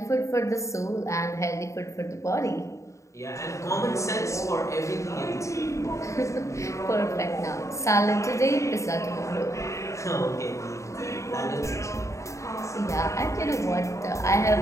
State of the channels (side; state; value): right; late; 0.15 ms